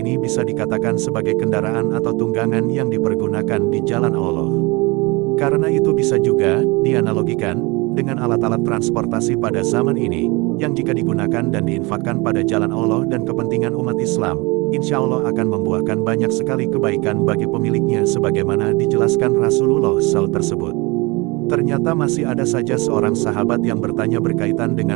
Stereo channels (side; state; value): left; quieter; 25.9 dB